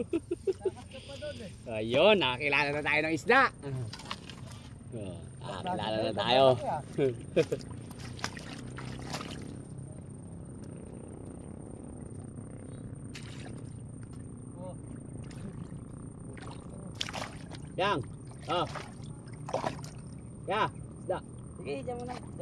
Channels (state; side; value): identical; both; correlation 1.00